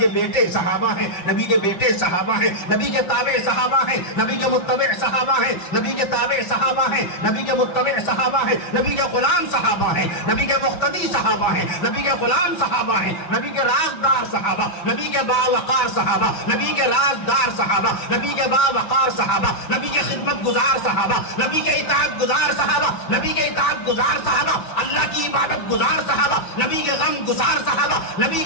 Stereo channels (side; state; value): right; late; 5.7 ms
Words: بیٹے صحابہ ہیں، نبی کے بیٹے صحابہ ہیں، نبی کے تابع صحابہ ہیں، نبی کے متبع صحابہ ہیں، نبی کے تابع صحابہ ہیں، نبی کے متبع صحابہ ہیں، نبی کے غلام صحابہ ہیں، نبی کے مقتدی صحابہ ہیں، نبی کے غلام صحابہ ہیں، نبی کے رازدار صحابہ، نبی کے باوقار صحابہ، نبی کے رازدار صحابہ، نبی کے باوقار صحابہ، نبی کے خدمت گزار صحابہ، نبی کے اطاعت گزار صحابہ، نبی کے اطاعت گزار صحابہ، اللہ کی عبادت گزار صحابہ، نبی کے غم گزار صحابہ، نبی